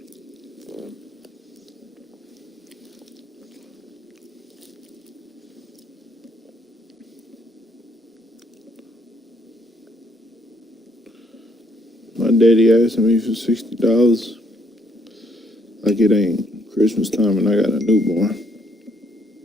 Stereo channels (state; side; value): normal; both; correlation 0.69